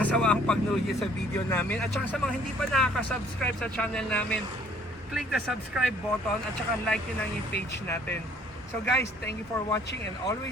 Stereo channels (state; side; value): normal; both; correlation 0.59